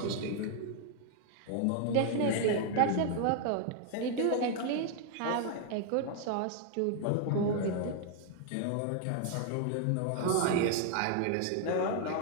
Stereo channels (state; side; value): different; both; correlation 0.00